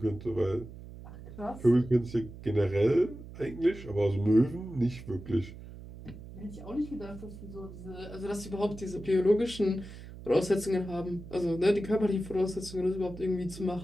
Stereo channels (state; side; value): noise; right; hum, 14 dB below the sound